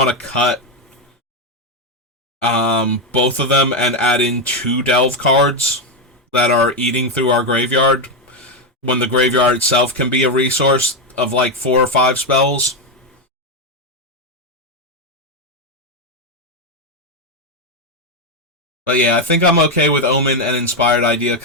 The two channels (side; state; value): both; normal; correlation 0.06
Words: to cut both of them and add in 2 Delve cards that are eating through our graveyard, when the graveyard itself can be a resource of like 4 or 5 spells. But yeah, I think I'm okay with Omen and Inspired Idea